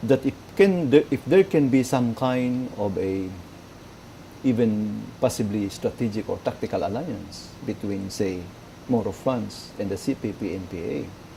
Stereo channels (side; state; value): both; identical; correlation 1.00